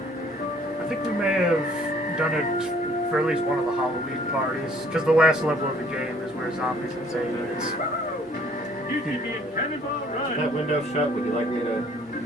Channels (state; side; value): normal; both; correlation 0.59